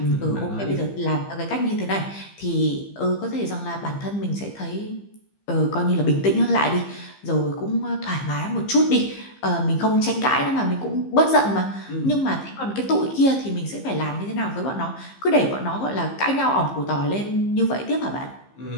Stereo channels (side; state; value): right; late; 15 ms